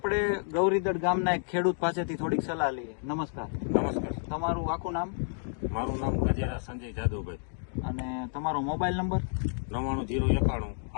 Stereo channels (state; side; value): silent; right; digital silence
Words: ગૌરીદળ ગામના એક ખેડૂત પાસેથી થોડીક સલાહ લઈએ. નમસ્કાર. નમસ્કાર. તમારું આખું નામ? મારું નામ ગજેરા સંજય જાદવભાઈ. અને તમારો મોબાઈલ નંબર? 9991